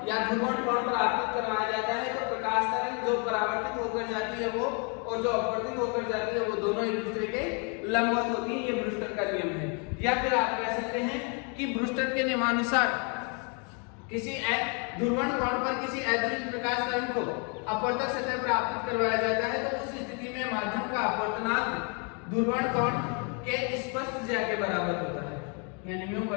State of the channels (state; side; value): quieter; right; 36.5 dB